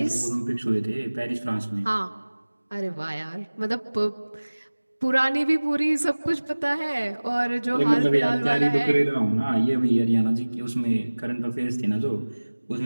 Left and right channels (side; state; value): both; inverted; correlation -1.00